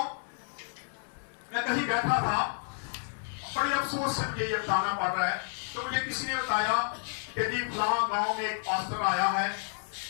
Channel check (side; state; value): right; silent; 57 dB below the other